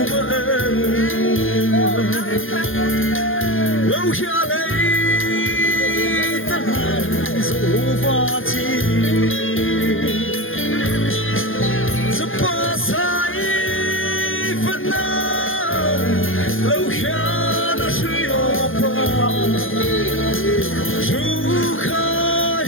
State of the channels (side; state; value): right; late; 0.59 ms